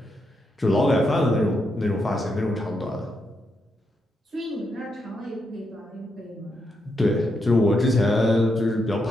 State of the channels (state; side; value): normal; both; correlation 0.81